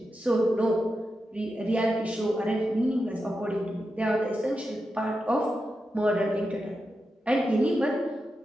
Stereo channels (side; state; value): both; normal; correlation 0.89